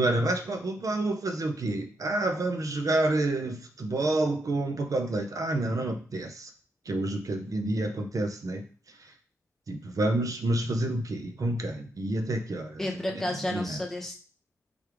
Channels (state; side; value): normal; both; correlation 0.79